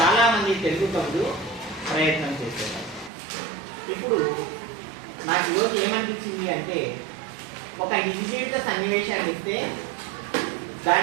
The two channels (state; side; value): drops out; left; at 3.1 s